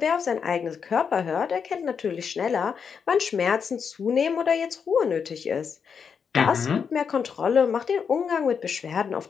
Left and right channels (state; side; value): quieter; right; 6.5 dB